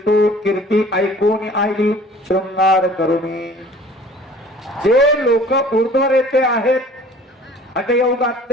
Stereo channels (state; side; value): normal; both; correlation 0.49